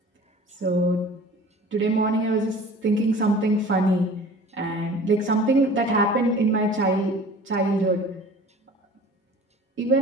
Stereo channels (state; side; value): normal; both; correlation 0.44